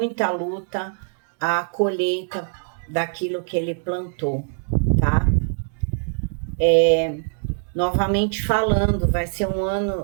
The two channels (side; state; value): left; silent; 60 dB below the other